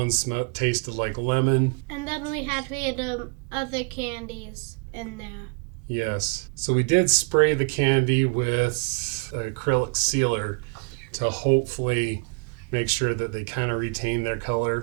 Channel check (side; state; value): left; quieter; 33.8 dB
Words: tasted like lemon. And then we had other candies in there. Yes. So we did spray the candy with acrylic sealer to hopefully make sure that they kind of retained their